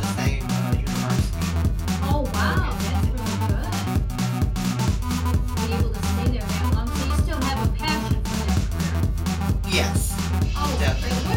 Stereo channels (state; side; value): identical; both; correlation 1.00